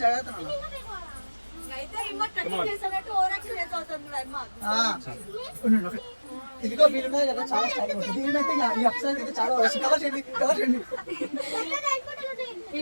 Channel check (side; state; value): both; inverted; correlation -1.00